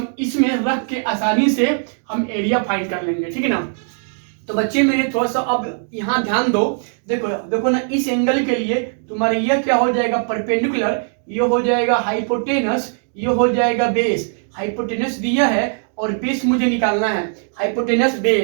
इसमें रख के आसानी से हम एरिया फाइंड कर लेंगे, ठीक है ना। तो बच्चे मेरे थोड़ा सा अब यहाँ ध्यान दो, देखो देखो ना, इस एंगल के लिए तुम्हारे यह क्या हो जाएगा परपेंडिकुलर, ये हो जाएगा हाइपोटेनस, ये हो जाएगा बेस। हाइपोटेनस दिया है और बेस मुझे निकालना है, हाइपोटेनस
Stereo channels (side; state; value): left; silent; 58 dB below the other